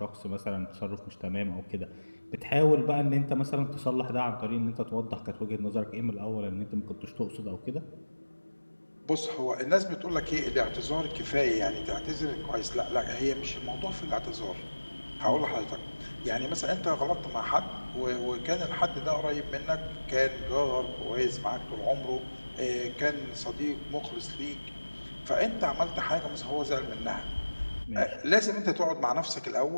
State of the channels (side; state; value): both; inverted; correlation -1.00